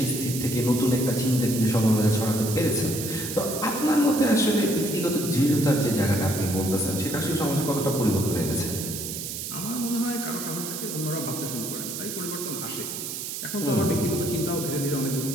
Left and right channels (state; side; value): noise; right; hiss, 6 dB below the sound